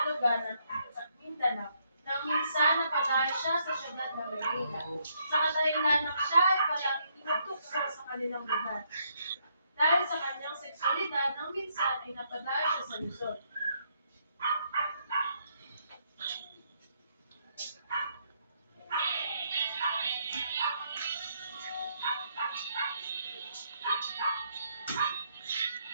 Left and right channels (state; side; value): inverted; both; correlation -0.73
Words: lugar ng Mindanao nang minsan napatay siya sa syudad ng Maynila. Sa kadahilanan siya ay palaging tinutukso sa kanilang lugar. Dahil sa kanyang seksualidad, nang minsan ay napadaya siya sa Luzon.